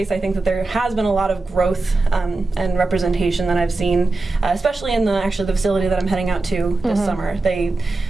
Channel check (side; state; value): left; quieter; 3.3 dB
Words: I think that there has been a lot of growth and representation that I've seen, especially in the facility that I'm heading out to this summer.